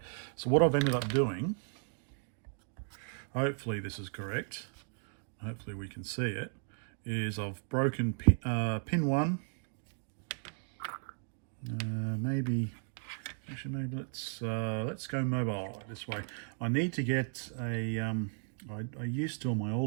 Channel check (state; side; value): silent; left; 54 dB below the other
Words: so what I've ended up doing, hopefully this is correct, hopefully we can see it, is I've broken pin 1. Maybe let's go mobile this way. I need to get a I used to, on my